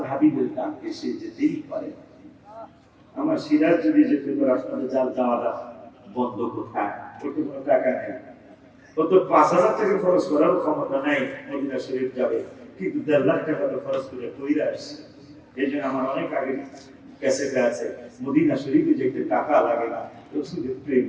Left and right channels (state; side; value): identical; both; correlation 1.00